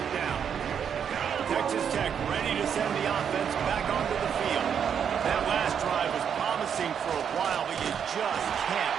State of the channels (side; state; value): left; quieter; 7.8 dB